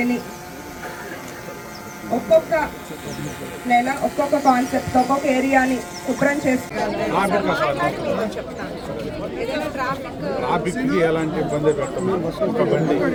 ఒక్కొక్క నెల ఒక్కొక్క కాన్సెప్ట్ ఒక్కొక్క ఏరియాని శుభ్రం చేస్తారు. ట్రాఫిక్కి ఎలాంటి ఇబ్బంది పెట్టము. ఒక బండి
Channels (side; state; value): both; identical; correlation 1.00